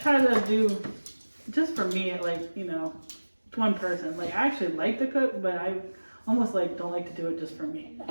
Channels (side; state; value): both; inverted; correlation -1.00